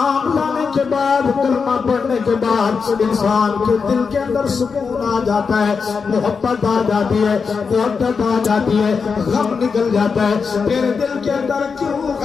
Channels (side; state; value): right; quieter; 5.4 dB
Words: لانے کے بعد کلمہ پڑھنے کے بعد انسان کے دل کے اندر سکون آ جاتا ہے، محبت آ جاتی ہے، محبت آ جاتی ہے، غم نکل جاتا ہے۔ تیرے دل کے اندر کیوں